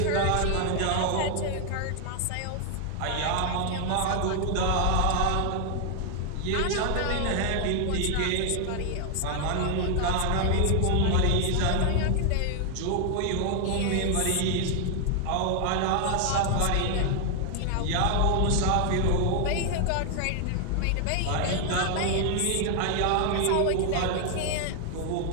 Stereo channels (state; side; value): different; both; correlation 0.00